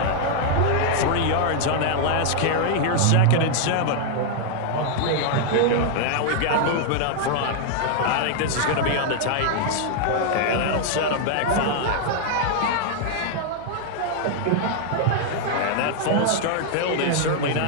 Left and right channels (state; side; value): different; both; correlation 0.00